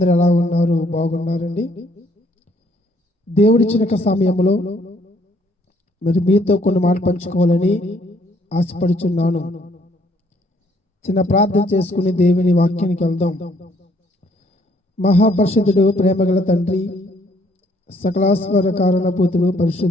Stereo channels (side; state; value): both; normal; correlation 0.66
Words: ఎలా ఉన్నారు? బాగున్నారండి. దేవుడిచ్చిన సమయంలో మరి మీతో కొన్ని మాటలు పంచుకోవాలని ఆశపడుచున్నాను. చిన్న ప్రార్థన చేసుకుని దేవుని వాక్యానికి వెళ్దాం. మహాపరిశుద్ధుడు, ప్రేమగల తండ్రి, సకలాశ్వర కారణభూతుడు,